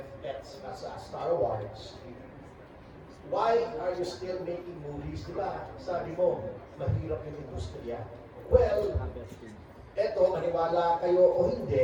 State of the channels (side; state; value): both; identical; correlation 1.00